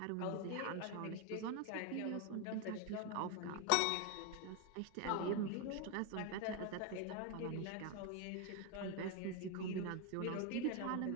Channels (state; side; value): different; both; correlation 0.01